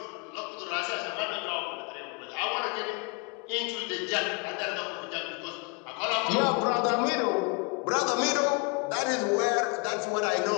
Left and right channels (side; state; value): right; quieter; 31.3 dB